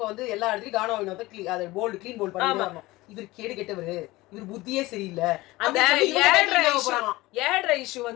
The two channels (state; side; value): quieter; right; 19.7 dB